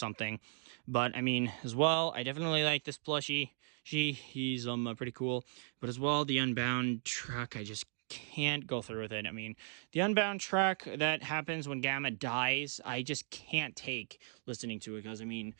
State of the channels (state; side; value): silent; left; digital silence